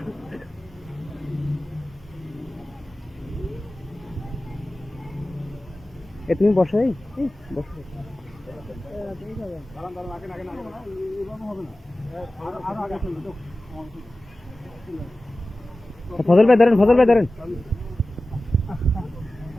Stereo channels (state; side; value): normal; both; correlation 0.96